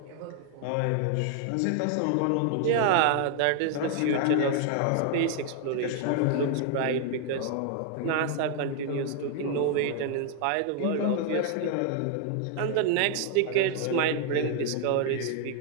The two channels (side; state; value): both; different; correlation 0.00